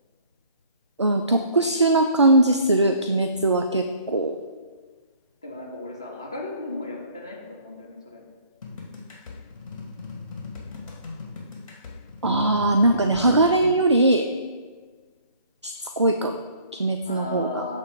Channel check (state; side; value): inverted; both; correlation -0.56